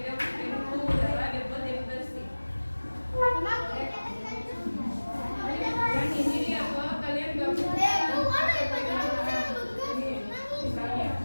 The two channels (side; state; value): both; inverted; correlation -1.00